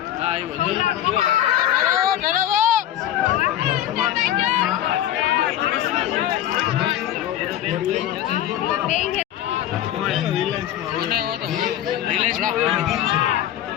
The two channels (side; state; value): right; quieter; 12.0 dB